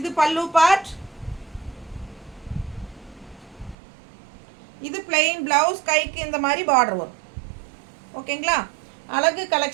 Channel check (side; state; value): left; drops out; at 3.8 s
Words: பல்லு பார்ட். இது பிளெயின் ப்ளவுஸ், கைக்கு இந்த மாதிரி பார்டர் வரும். ஓகேங்களா? அழகு